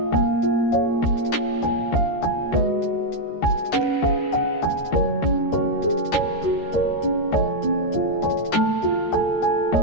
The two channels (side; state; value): right; late; 13 ms